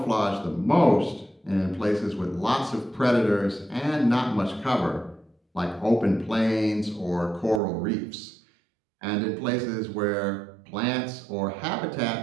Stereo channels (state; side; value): drops out; left; at 7.6 s